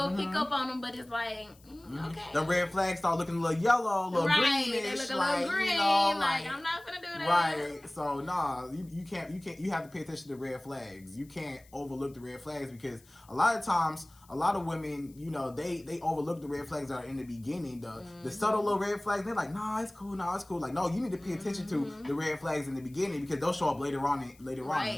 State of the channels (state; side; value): noise; left; hiss, 28 dB below the sound